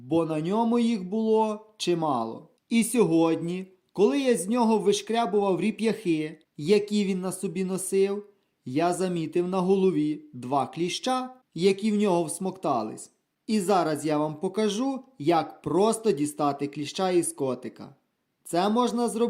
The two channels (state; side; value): identical; both; correlation 1.00